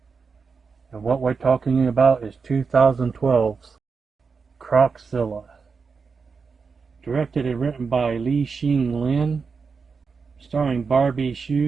And what we're talking about is 2012's Crocodile. Directed and written by Li Xing Lin, starring Barbie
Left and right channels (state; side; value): quieter; left; 5.2 dB